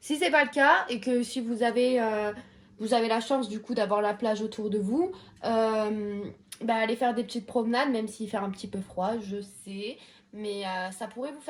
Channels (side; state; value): both; identical; correlation 1.00